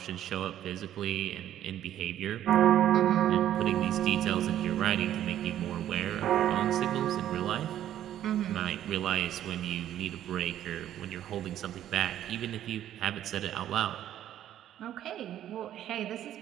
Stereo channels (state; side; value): quieter; left; 11.6 dB